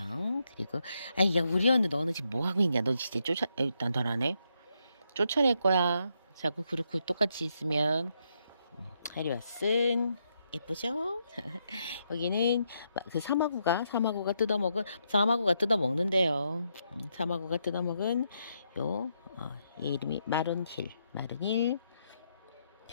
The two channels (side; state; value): both; inverted; correlation -0.79